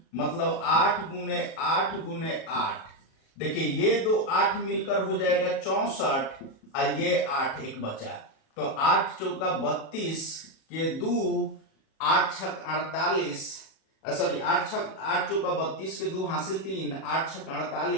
मतलब 8 गुने 8 गुने 8। देखिए ये दो 8 मिलकर हो जाएगा 64 और ये 8 एक बचा, तो 8 चौका 32 के दो 8 छक 48, सॉरी 8 चौका 32 के दो हासिल 3, 8 छक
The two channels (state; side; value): late; right; 37 ms